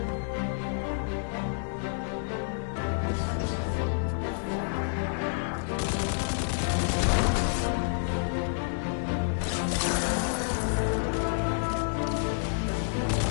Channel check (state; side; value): silent; right; 59 dB below the other